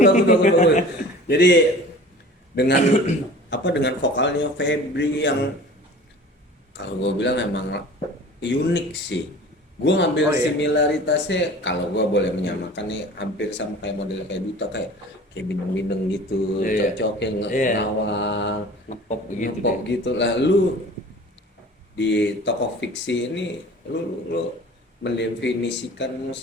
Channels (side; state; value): both; normal; correlation 0.43